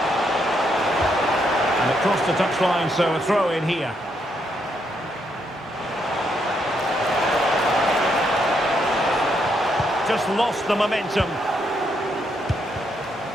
And across the touchline, so a throw in here. Just lost the momentum.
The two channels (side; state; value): both; normal; correlation 0.77